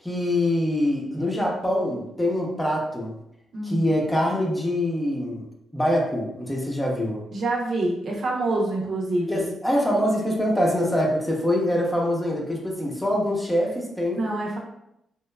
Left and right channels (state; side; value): normal; both; correlation 0.84